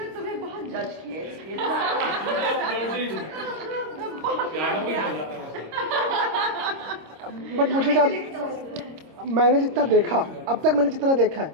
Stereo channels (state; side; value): late; left; 26 ms